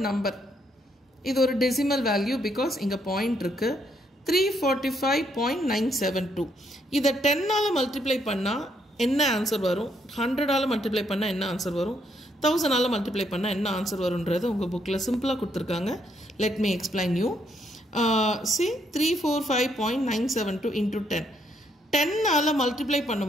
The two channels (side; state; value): both; normal; correlation 0.73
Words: number. இது ஒரு டெசிமல் வேல்யூ பிகாஸ் இங்க பாயிண்ட் இருக்கு. 345.972. இதை 10ஆல மல்டிப்ளை பண்ணா என்ன ஆன்சர் வரும், 100ஆல மல்டிப்ளை பண்ணா என்ன ஆன்சர் வரும், 1000ஆல மல்டிப்ளை பண்ணா என்ன ஆன்சர் வரும்ன்றது உங்க புக்ல சிம்பிளா கொடுத்திருக்காங்க. Let me explain you. See, 345.972 into 10. 10ஆல மல்டிப்ளை